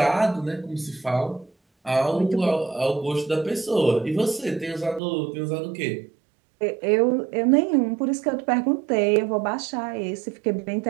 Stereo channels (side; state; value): left; drops out; at 5.0 s